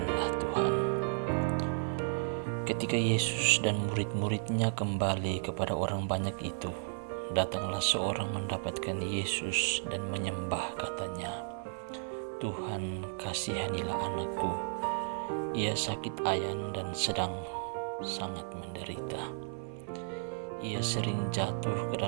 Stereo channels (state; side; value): silent; left; 55 dB below the other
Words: Tuhan. Ketika Yesus dan murid-muridnya kembali kepada orang banyak itu, datanglah seorang mendapatkan Yesus dan menyembah, katanya, "Tuhan, kasihanilah anakku. Ia sakit ayan dan sedang sangat menderita. Ia sering jatuh ke